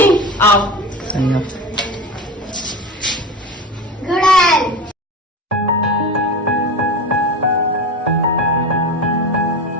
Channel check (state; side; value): normal; both; correlation 0.27